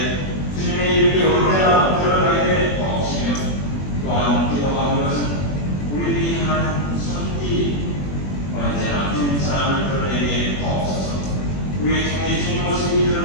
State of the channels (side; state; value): right; late; 21 ms